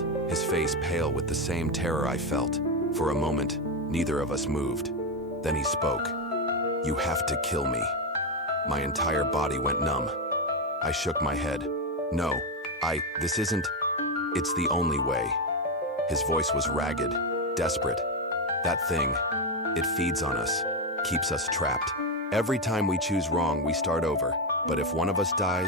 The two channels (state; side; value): normal; both; correlation 0.09